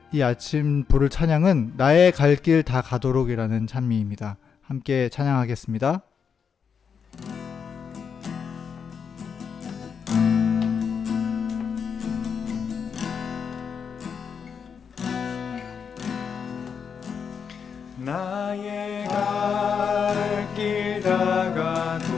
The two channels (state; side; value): quieter; right; 6.6 dB